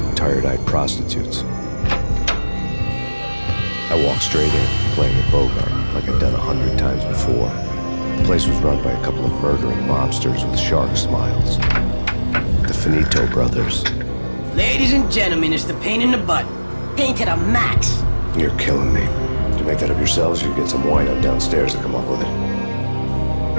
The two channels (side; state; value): both; inverted; correlation -1.00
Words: and tired-eyed prostitutes. I walked straight in, playing a Bogart like I'd done 100 times before. The place was run by a couple of murdering mobsters with shark smiles. The Finito brothers. Ladies and gentlemen, it's the pain in the butt. Pain to the max. You're killing me. Did you make that up yourselves, or you get some wino downstairs to come up with it?